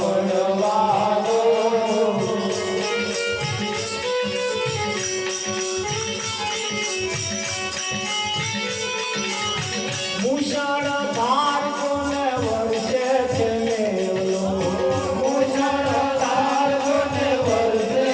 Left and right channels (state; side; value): identical; both; correlation 1.00